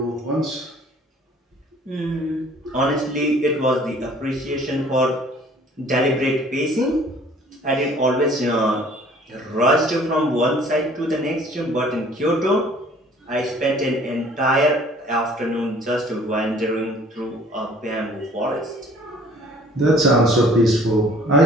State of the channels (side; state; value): both; normal; correlation 0.54